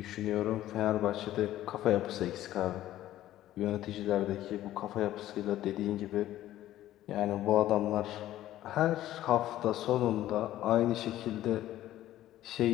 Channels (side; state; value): right; quieter; 13.8 dB